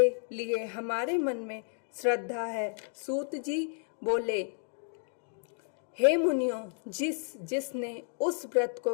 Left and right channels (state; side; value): silent; right; 57 dB below the other